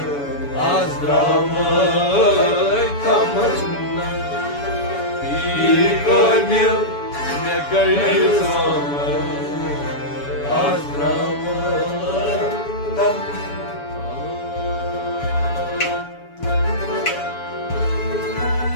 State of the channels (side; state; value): right; late; 7.0 ms